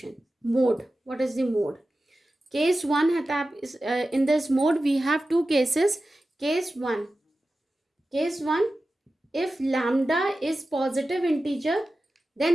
Mode. What is the mode? Case 1 है, in this mode we have two cases. Case 1, if lambda is positive integer,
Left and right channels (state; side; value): normal; both; correlation 0.94